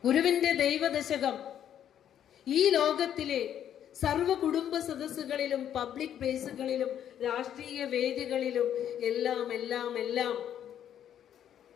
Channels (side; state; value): right; quieter; 10.0 dB